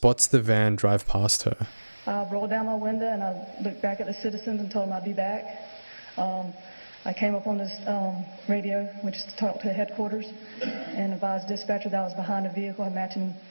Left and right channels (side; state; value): both; inverted; correlation -1.00